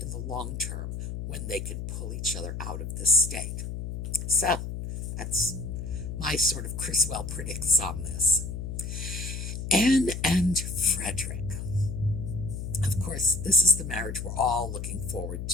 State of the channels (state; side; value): noise; left; hum, 6 dB below the sound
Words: the long term when they can pull each other out of this state. So, that's my sort of Criswell predicts on this. Anne and Frederick. Of course, this is the marriage we're all looking forward